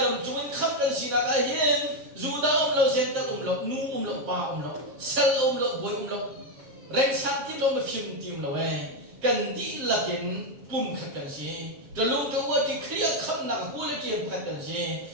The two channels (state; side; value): late; left; 7.7 ms